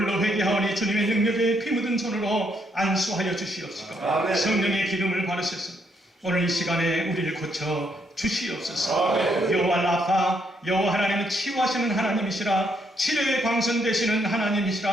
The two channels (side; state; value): both; normal; correlation 0.74